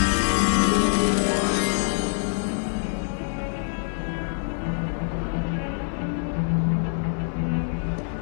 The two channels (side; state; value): right; silent; digital silence